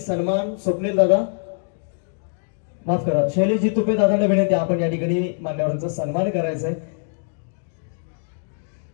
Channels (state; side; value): silent; right; digital silence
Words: स्वप्नील दादा माफ करा शैलेशजी तुपे दादांना विनंती आपण या ठिकाणी मान्यवरांचा सन्मान करायचा आहे।